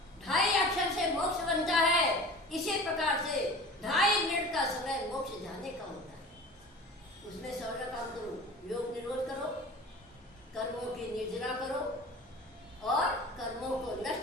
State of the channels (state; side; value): normal; both; correlation 0.39